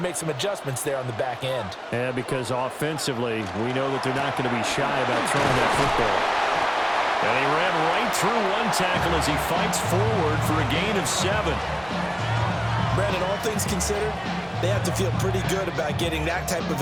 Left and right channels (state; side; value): identical; both; correlation 1.00